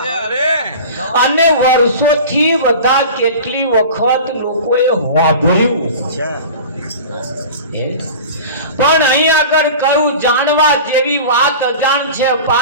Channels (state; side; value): inverted; both; correlation -0.36